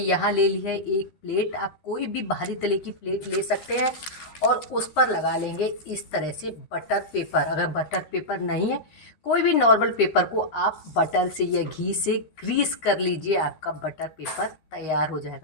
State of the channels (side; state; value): right; late; 13 ms